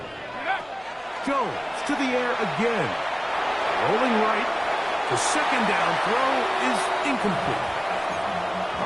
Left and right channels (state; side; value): identical; both; correlation 1.00